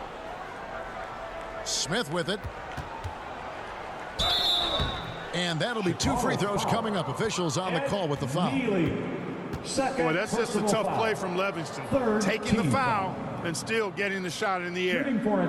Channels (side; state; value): both; identical; correlation 1.00